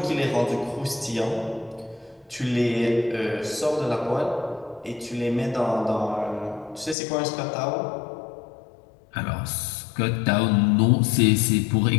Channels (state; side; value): drops out; right; at 7.0 s